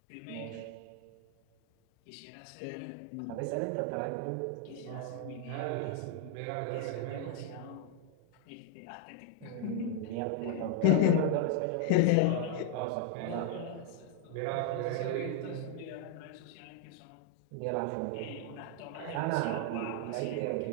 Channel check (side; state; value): both; different; correlation 0.00